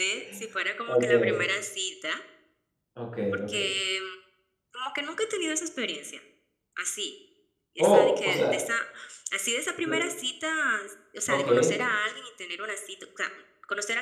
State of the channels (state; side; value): identical; both; correlation 1.00